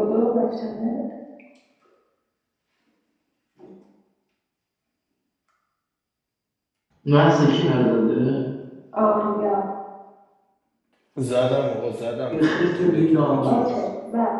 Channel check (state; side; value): identical; both; correlation 1.00